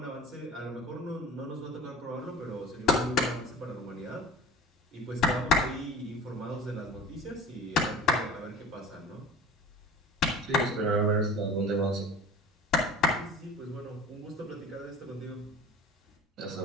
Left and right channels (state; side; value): normal; both; correlation 0.39